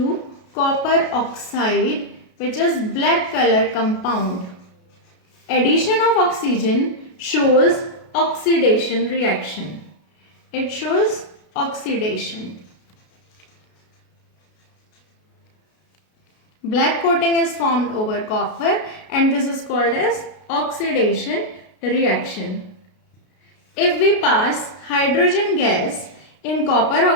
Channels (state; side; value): late; right; 33 ms